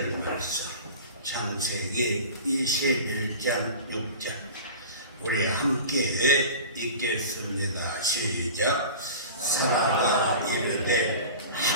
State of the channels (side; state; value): both; inverted; correlation -0.36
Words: 말씀. 창세기 21장 6절 우리 함께 읽겠습니다. 시작. 사라가 이르되